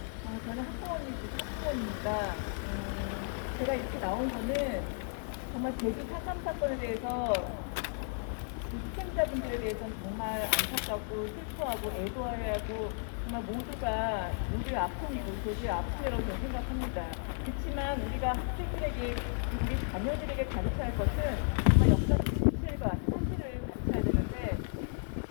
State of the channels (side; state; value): right; silent; 55 dB below the other